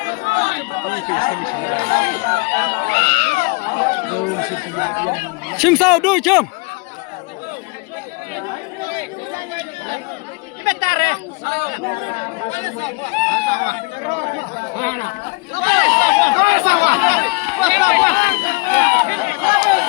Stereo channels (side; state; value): right; quieter; 29.0 dB